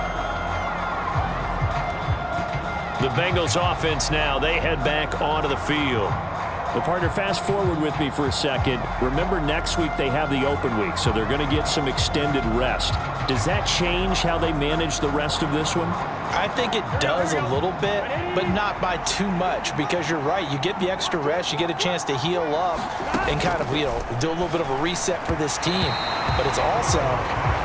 The Bengals offense now, they head back onto the field. Well, partner, fast forward with me for a second. Remember, next week they have the open week, so they're going to get some extended rest. Does that change how they manage the rest of this one? I think it does a little bit, but not by too much, because you're right. You get the extra rest, you get a chance to heal up and kind of, do a little bit of a reset for this team. But it's also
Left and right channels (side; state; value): both; identical; correlation 1.00